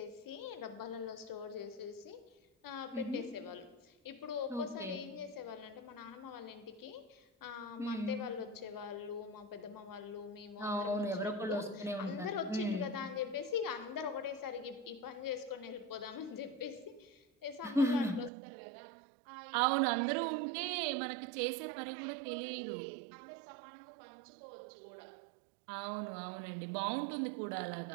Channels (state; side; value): drops out; left; at 18.3 s